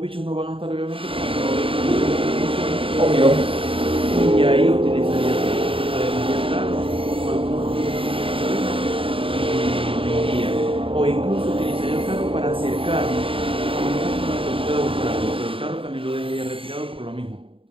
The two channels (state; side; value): late; left; 0.26 ms